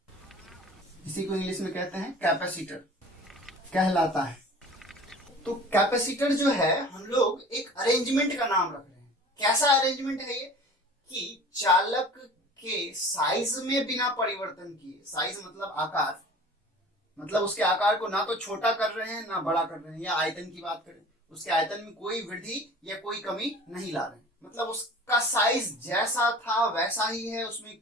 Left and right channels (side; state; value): both; normal; correlation 0.43